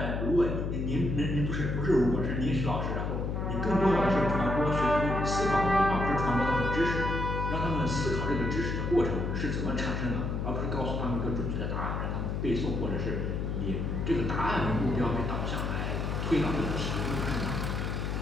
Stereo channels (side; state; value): left; noise; hum, 1 dB below the sound